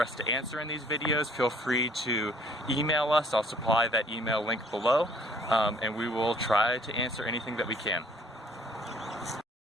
us to answer in these videos, feel free to email us. I'll supply that email link below, and we will try to answer anything that we can.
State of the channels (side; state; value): both; normal; correlation 0.58